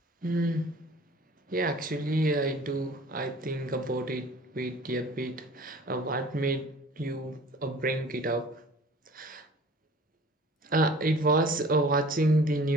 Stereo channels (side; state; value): both; normal; correlation 0.47